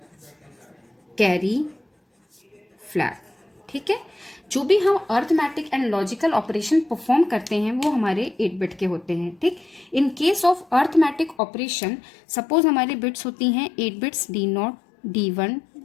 carry flag. ठीक है, जो भी हम arithmetic and logical operation perform करते हैं वो हमारे 8 बिट के होते हैं. ठीक, इन case of arithmetic operation suppose हमारी बिट्स होती हैं 8 bits, D0, D1,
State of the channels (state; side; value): drops out; right; at 11.4 s